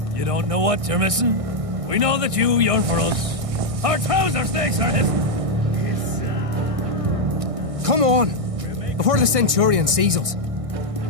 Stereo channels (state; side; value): late; left; 1.6 ms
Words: You don't know what you're missing? We know that you yearn for us. Our trouser snakes are his. Come on! Before the Centurion sees us.